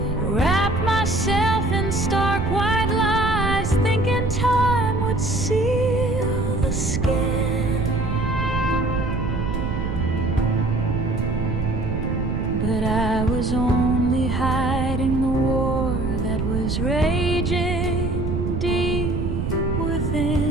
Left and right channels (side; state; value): right; noise; rumble, 1 dB below the sound